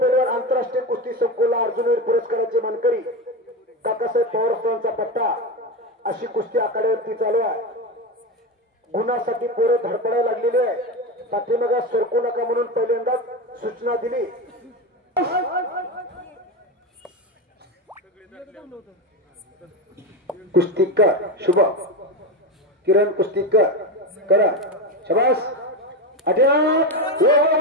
आंतरराष्ट्रीय कुस्ती संकुला अर्जुनवीर पुरस्काराचे मानकरी काकासाहेब पवारांचा पट्टा. अशी कुस्ती आखाड्यावरती चालू आहे. गुणासाठी पोरं धडपडायला लागलेली आहे. पाठीमागे सरकू नका म्हणून पहिल्यांदाच सूचना दिली. कुस्तीकर शुभ किरण कुस्तीकर करा. शाबास, अटॅक.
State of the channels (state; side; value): normal; both; correlation 0.17